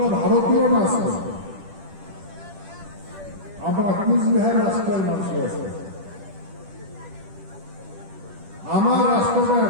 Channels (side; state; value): left; late; 10 ms